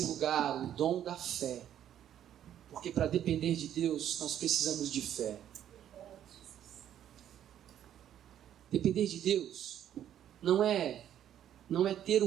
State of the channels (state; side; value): quieter; left; 10.6 dB